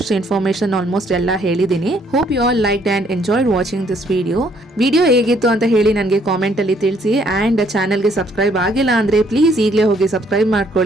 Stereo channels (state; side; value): normal; both; correlation 0.66